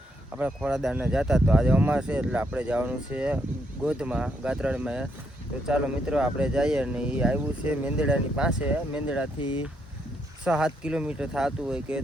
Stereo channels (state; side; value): normal; both; correlation 0.76